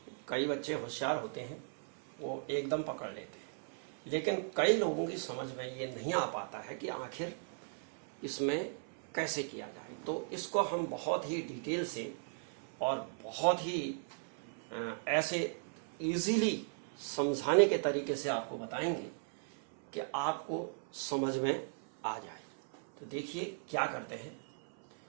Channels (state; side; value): silent; left; 53 dB below the other